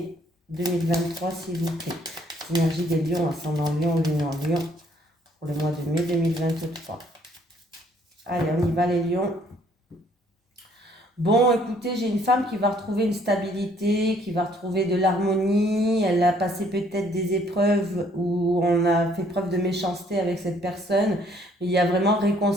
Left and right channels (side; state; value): both; normal; correlation 0.63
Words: 2023, s'il vous plaît. Les énergies des lions, ascendant lion, lune en lion, pour le mois de mai 2023. Allez, on y va les lions. Bon, écoutez, j'ai une femme qui va retrouver une stabilité, qui va retrouver de l'harmonie. Elle a passé peut-être des épreuves où on a fait preuve de méchanceté avec cette personne. Il y a vraiment